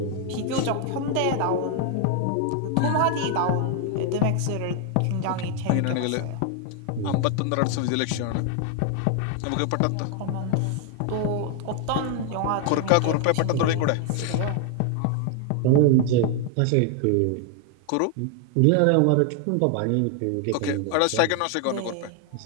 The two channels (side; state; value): both; different; correlation 0.00